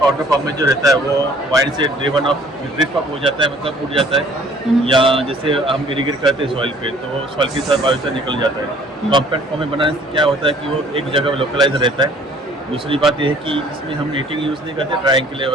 फॉर्म में जो रहता है वो वाइन से ड्रिवन ऑफ ड्रिफ्ट ऑफ हो जाता है, मतलब उड़ जाता है, या जैसे हम इरिगेट करते हैं सॉइल पे तो सॉइल के साथ बायोचर निकल जाता है। कॉम्पैक्ट फॉर्म में बनाने से क्या होता है कि वो एक जगह लोकलाइज रहता है। दूसरी बात यह है कि इसमें हम नीटिंग यूज़ नहीं करते, ड्राइंग के लिए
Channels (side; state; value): both; normal; correlation 0.55